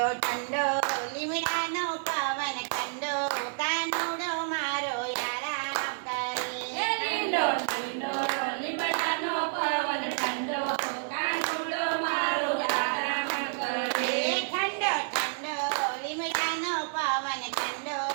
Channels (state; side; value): silent; left; 58 dB below the other